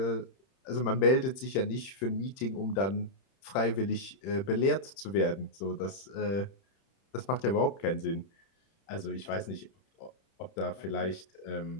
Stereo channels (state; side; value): late; right; 31 ms